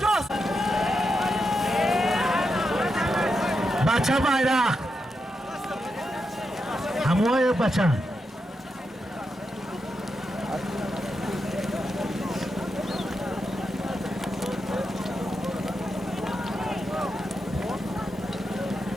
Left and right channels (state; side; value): normal; both; correlation 0.86